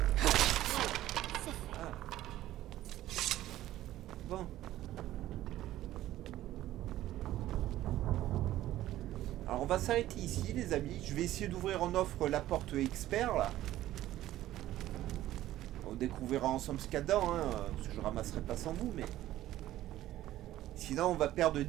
Ah. Bon. Alors on va s'arrêter ici les amis. Je vais essayer d'ouvrir en offre la porte expert là. On découvrira ensemble ce qu'il y a dedans, hein, parce que je ramasserai pas sans vous, mais... Sinon on va perdre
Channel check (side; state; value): left; quieter; 14.2 dB